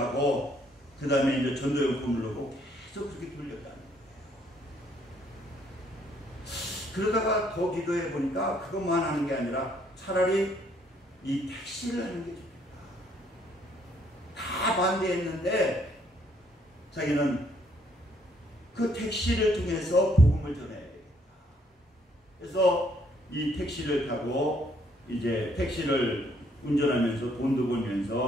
그 다음에 이제 전도용품을 넣고 계속 그렇게 돌렸다는 거예요. 그러다가 더 기도해 보니까 그것만 하는 게 아니라 차라리 이 택시를 하는 게 좋겠다. 다 반대했는데 자기는 그 택시를 통해서 복음을 전해야 되겠다. 그래서 이 택시를 타고 이제 택시를 운전하면서 돈도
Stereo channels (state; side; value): normal; both; correlation 0.67